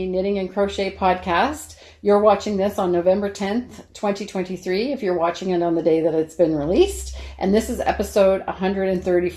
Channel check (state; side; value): identical; both; correlation 1.00